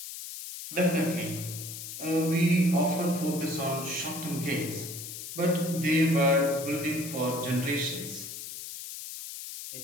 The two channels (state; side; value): noise; left; hiss, 9 dB below the sound